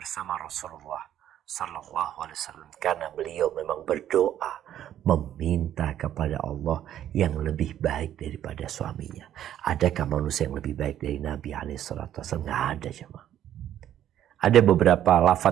Rasulullah Sallallahu Alaihi Wasallam, karena beliau memang berdoa meminta kepada Allah yang lebih baik daripada suaminya. Adakah manusia yang lebih baik dari Nabi SAW? Nggak ada, jemaah. Ada beberapa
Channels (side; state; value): left; quieter; 11.2 dB